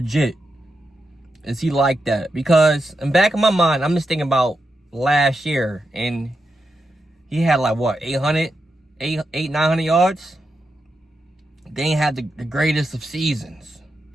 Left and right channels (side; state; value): both; normal; correlation 0.87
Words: Is he like that? Because in the back of my mind, I'm just thinking about last year, and he had, like, what, 900 yards? They ain't had the greatest of seasons.